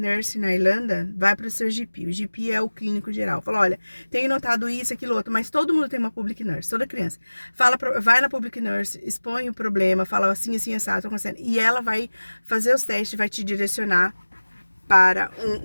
na Irlanda, vai para o seu GP. O GP é o clínico geral. Fala, olha, tenho notado isso, aquilo, outro, mas todo mundo tem uma public nurse, toda criança. Vai na public nurse, expõe o problema, fala assim, assim, assado, tô acontecendo. E ela vai fazer os testes, vai te direcionar para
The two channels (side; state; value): both; inverted; correlation -1.00